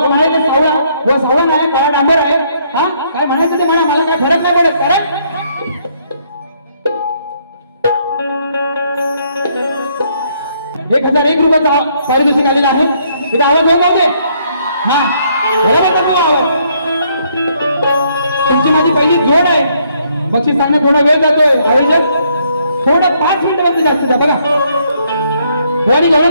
म्हणायचं सावळा हो सावळा नाही काळा डांबर आहे हा काय म्हणायचं ते म्हणा मला काय फरक नाही पडत कारण 1001 रुपयाचा पारितोषिक आलेला आहे इथं आवाज होत नव्हते हा बरोबर तो आवाज तुमची माझी पहिली जोड आहे बक्षीस सांगणं थोडा वेळ जातोय आयोजक थोडा 5 मिनिटांमध्ये जास्त द्या बघा गवळणी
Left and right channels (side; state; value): both; inverted; correlation -0.70